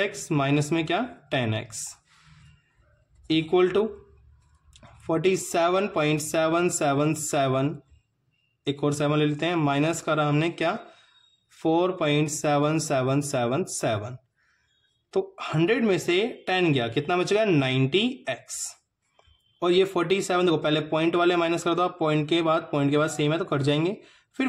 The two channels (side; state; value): both; identical; correlation 1.00